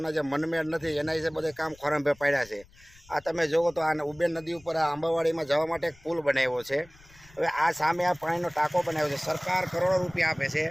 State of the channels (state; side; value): noise; left; rumble, 26 dB below the sound